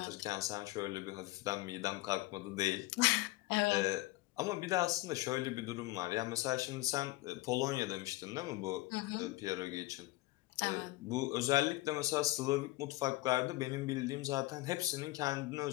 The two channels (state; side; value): quieter; right; 19.2 dB